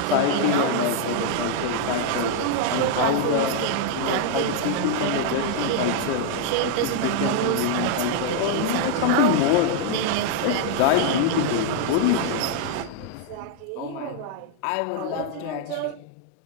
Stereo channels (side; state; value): both; different; correlation 0.00